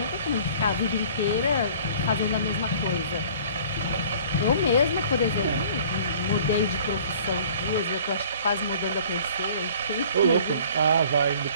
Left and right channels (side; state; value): both; inverted; correlation -0.50